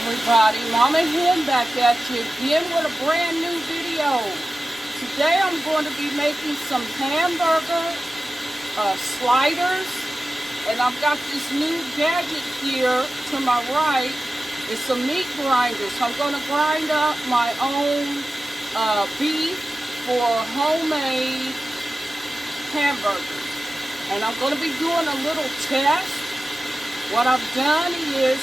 Mama Hen back at you again with a brand new video. Today I'm going to be making some hamburger sliders, and I've got this new gadget here to my right. It's a meat grinder, so I'm going to grind up my own beef for homemade hamburgers. And I'm going to be doing a little test. What I've done is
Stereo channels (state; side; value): normal; both; correlation 0.94